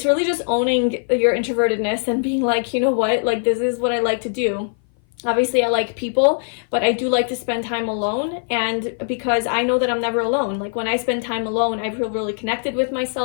really just owning your introvertedness and being like, you know what, like, this is what I like to do. Obviously, I like people, but I do like to spend time alone, and because I know that I'm never alone. Like, when I spend time alone, I feel really connected with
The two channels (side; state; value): right; silent; 57 dB below the other